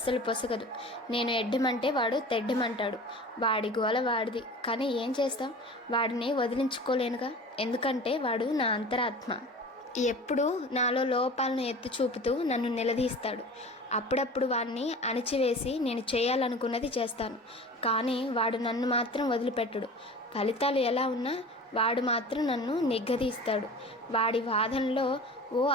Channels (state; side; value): normal; both; correlation 0.38